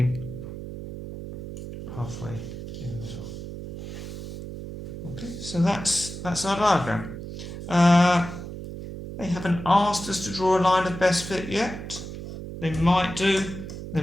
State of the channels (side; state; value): right; noise; hum, 9 dB below the sound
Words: Halfway in the middle. Okay, so that's our diagram. They haven't asked us to draw a line of best fit yet. They might do, they